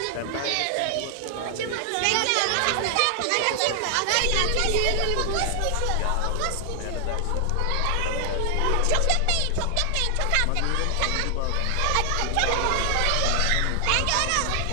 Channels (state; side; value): different; both; correlation 0.00